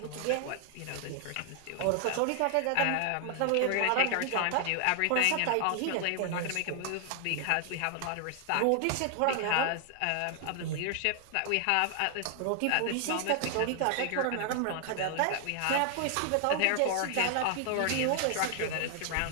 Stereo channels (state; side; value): different; both; correlation 0.00